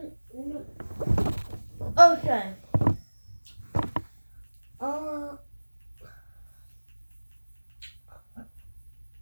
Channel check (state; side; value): inverted; both; correlation -1.00